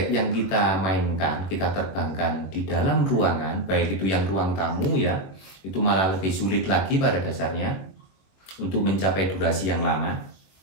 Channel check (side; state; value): right; late; 21 ms